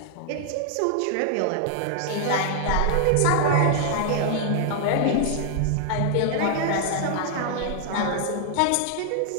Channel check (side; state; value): both; different; correlation -0.01